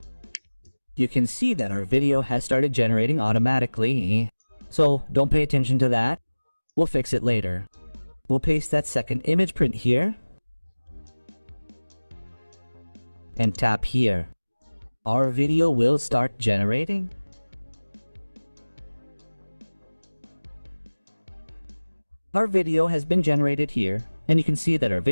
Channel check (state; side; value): inverted; both; correlation -1.00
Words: You can see that our video has started generating automatically. So don't pay attention to that. We'll fix it later. We'll paste that second image print here. And tap here. Our video will start generating. Our video has been generated here, and you can see that our